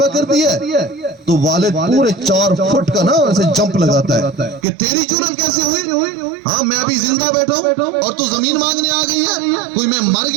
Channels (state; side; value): drops out; left; at 4.7 s